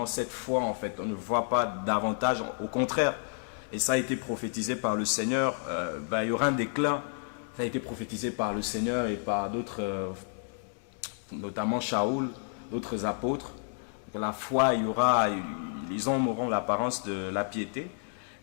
cette foi, en fait. On ne voit pas davantage, au contraire. Et ça a été prophétisé par le Seigneur. Il y aura un déclin. Ça a été prophétisé par le Seigneur et par d'autres, notamment Shaoul, d'autres apôtres. Que la foi, les hommes auront l'apparence de la piété.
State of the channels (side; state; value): right; silent; 57 dB below the other